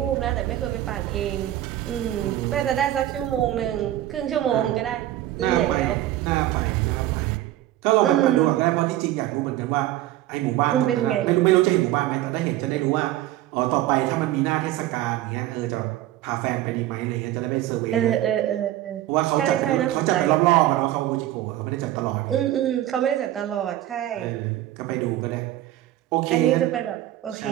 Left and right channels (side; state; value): left; quieter; 14.1 dB